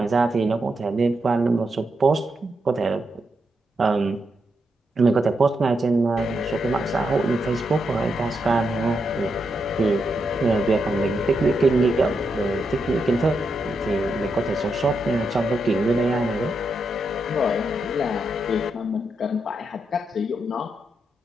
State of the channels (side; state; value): both; normal; correlation 0.83